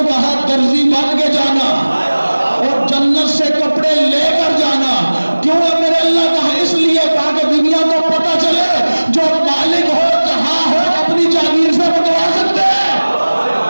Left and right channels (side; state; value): both; inverted; correlation -1.00